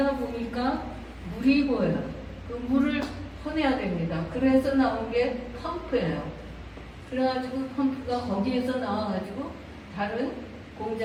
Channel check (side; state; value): both; identical; correlation 1.00